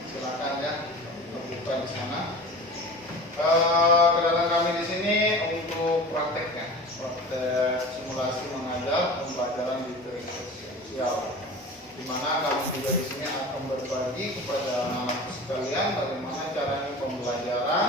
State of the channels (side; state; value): both; normal; correlation 0.36